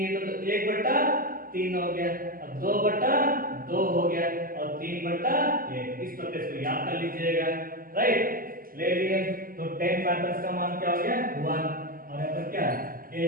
थे, तो 1/3 हो गया, अब 2/2 हो गया और 3/1। इस प्रकार से याद कर लीजिएगा, राइट। ले लिए तो 10 का मान क्या हो गया 1, और यहाँ पर क्या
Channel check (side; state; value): left; late; 0.42 ms